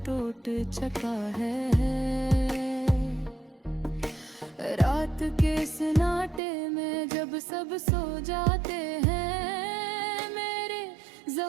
टूट चुका है। रात के सन्नाटे में जब सब सो जाते हैं, मेरे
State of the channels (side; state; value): left; drops out; at 6.4 s